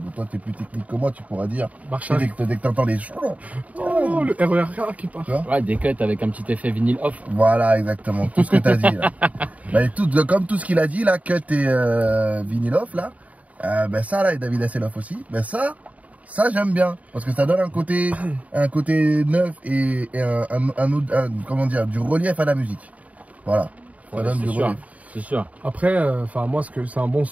Toi, t'es plus technique que moi, tu pourras dire. Marche arrêt. Dès que t'entends les oh, le RER qui part. Ouais, des cuts avec un petit effet vinyle off. Voilà, exactement, tout ce que t'as dit là. Bah, comme tout ce qu'il a dit là, cut et vinyle off là. Ça là, et David Hasselhoff aussi. Ça j'aime bien parce que ça donne un côté neuf et comment dire, du relief à la musique. Voilà. Ça donne du relief. C'est sûr. Après, moi c'est un bon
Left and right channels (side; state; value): left; late; 0.070 ms